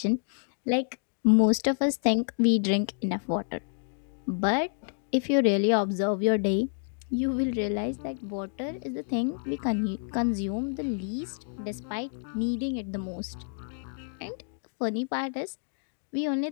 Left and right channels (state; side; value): silent; right; digital silence